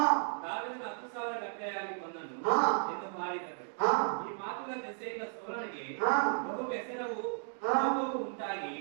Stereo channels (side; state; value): left; silent; digital silence